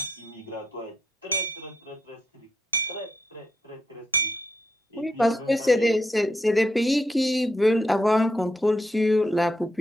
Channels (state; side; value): normal; both; correlation 0.80